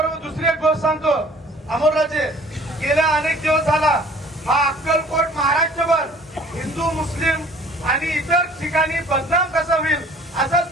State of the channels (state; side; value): normal; both; correlation 0.52